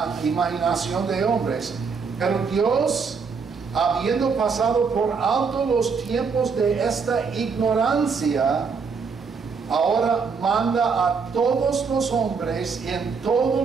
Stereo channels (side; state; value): left; quieter; 5.3 dB